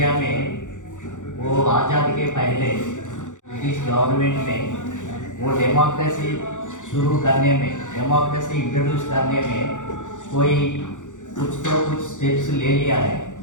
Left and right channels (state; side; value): late; right; 0.86 ms